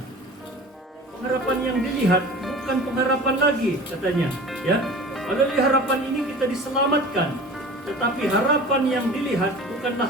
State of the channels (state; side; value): normal; both; correlation 0.39